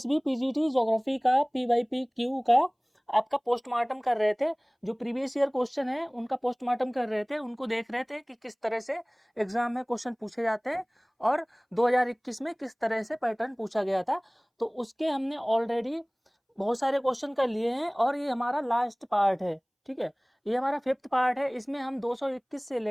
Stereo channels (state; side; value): identical; both; correlation 1.00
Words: B PGT geography का पीवाईपी क्यू का आपका पोस्टमार्टम कर रहे थे। जो प्रीवियस ईयर क्वेश्चन है उनका पोस्टमार्टम कर रहे थे, उनको देख रहे थे कि किस तरह से एग्जाम में क्वेश्चन पूछे जाते हैं और 2021 में किस तरह से पैटर्न पूछा गया था। तो उसके हमने ऑलरेडी बहुत सारे क्वेश्चन कर लिए हैं और ये हमारा लास्ट पार्ट है। ठीक है, ये हमारा फिफ्थ पार्ट है। इसमें हम 221 से